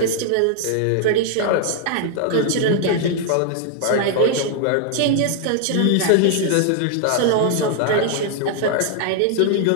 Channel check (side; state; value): both; different; correlation 0.00